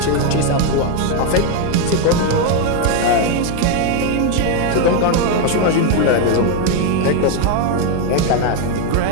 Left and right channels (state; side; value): different; both; correlation 0.01